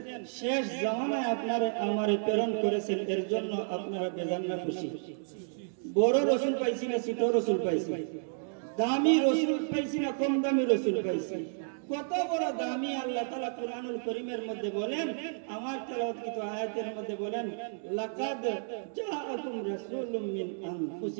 শেষ জামানায় আপনারে আমারে প্রেরণ করেছেন। এর জন্য আপনারা বেজান না খুশি? বড় রাসূল পাইছি না ছোট রাসূল পাইছি? দামি রাসূল পাইছি না কম দামি রাসূল পাইছি? কত বড় দামি! আল্লাহ তাআলা কুরআনুল কারীমের মধ্যে বলেন, আমার তেলাওয়াতকৃত আয়াতের মধ্যে বলেন, লাকাদ জাআকুম রাসূলুম মিন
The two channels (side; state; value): left; silent; digital silence